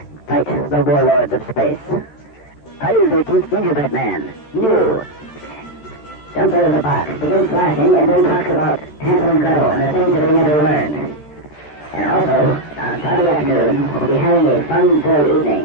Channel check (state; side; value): late; right; 13 ms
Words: fight the warlords of space. Friday the 13th, Gingerbread Man. New. Jumps out of the box, begins flashing, and then talks about Hansel and Gretel and the things that they never learned. And also, on Friday afternoon, we'll be having a fun-filled